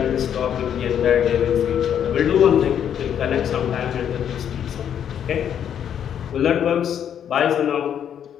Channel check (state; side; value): quieter; right; 9.1 dB